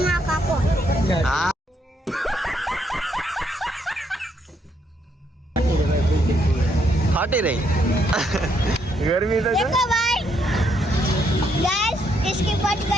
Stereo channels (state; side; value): normal; both; correlation 0.74